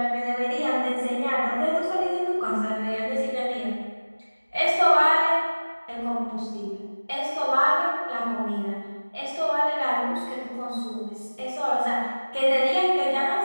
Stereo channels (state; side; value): inverted; both; correlation -1.00